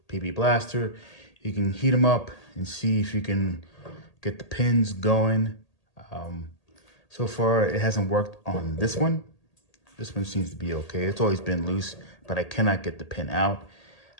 PB Blaster. You can heat them up and see if you can get the pins going. So far, it hasn't worked on this one. This one seems to be okay. It's always been loose, but I cannot get the pin out.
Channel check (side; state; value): right; late; 1.8 ms